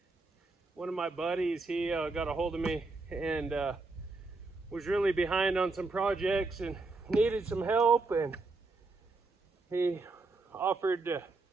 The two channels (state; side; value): quieter; left; 3.5 dB